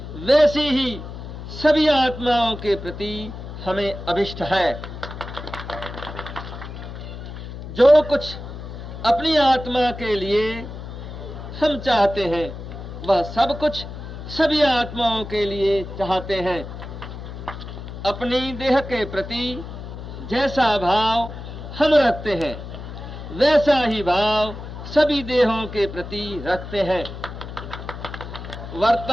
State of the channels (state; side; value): noise; left; hum, 10 dB below the sound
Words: वैसी ही सभी आत्माओं के प्रति हमें अभिष्ट है। जो कुछ अपनी आत्मा के लिए हम चाहते हैं वह सब कुछ सभी आत्माओं के लिए चाहते हैं। अपनी देह के प्रति जैसा भाव हम रखते हैं वैसा ही भाव सभी देहों के प्रति रखते हैं।